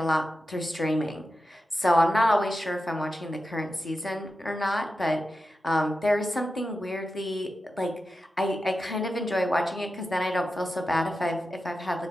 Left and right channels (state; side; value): normal; both; correlation 0.91